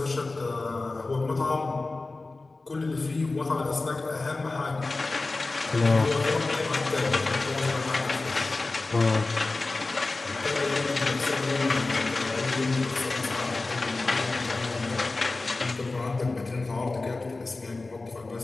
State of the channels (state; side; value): quieter; right; 3.4 dB